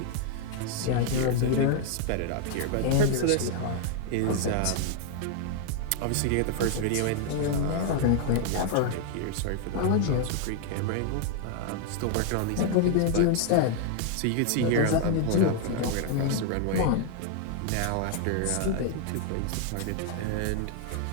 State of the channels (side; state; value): both; different; correlation 0.00